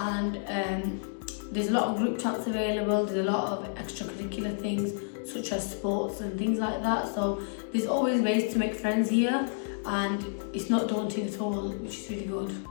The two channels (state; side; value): silent; right; digital silence